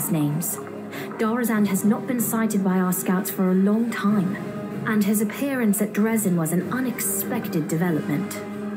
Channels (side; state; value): both; identical; correlation 1.00